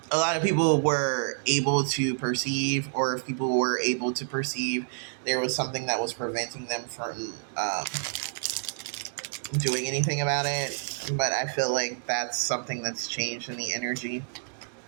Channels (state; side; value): silent; left; digital silence